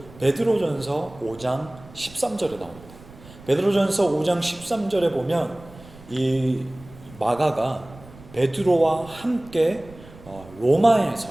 베드로전서 5장 13절에 나옵니다. 베드로전서 5장 13절에 보면 이 마가가 베드로와 함께 로마에서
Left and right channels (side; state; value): right; noise; rumble, 20 dB below the sound